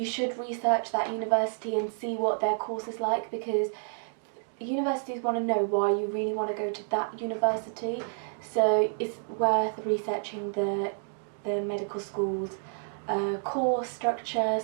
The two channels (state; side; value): silent; left; digital silence